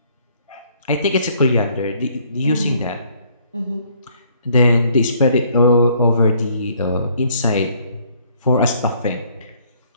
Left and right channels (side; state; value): both; inverted; correlation -0.63